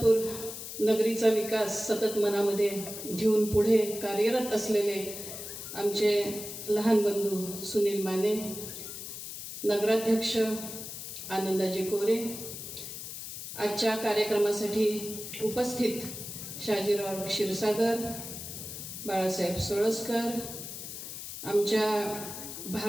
नगरीचा विकास सतत मनामध्ये घेऊन पुढे कार्यरत असलेले आमचे लहान बंधू सुनील माने, नगराध्यक्ष आनंदाजी कोरे, आजच्या कार्यक्रमासाठी उपस्थित शाजीराव क्षीरसागर, बाळासाहेब सोळसकर, आमच्या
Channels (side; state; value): left; noise; hiss, 9 dB below the sound